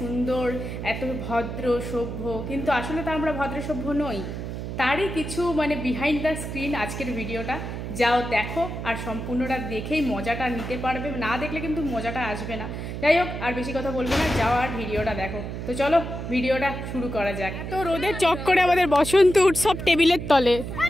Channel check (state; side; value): noise; right; hum, 6 dB below the sound